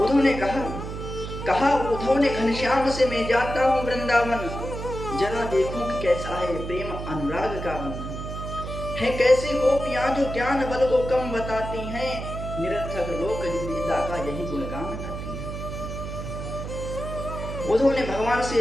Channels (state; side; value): noise; right; hum, 7 dB below the sound